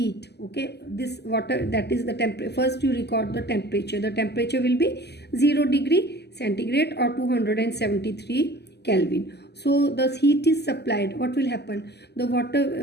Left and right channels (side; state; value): right; late; 0.49 ms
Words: Okay, this water, that is the temperature. First you record the temperature. The temperature will be 0 degree centigrade or 273 Kelvin. So the heat is supplied. What will happen? The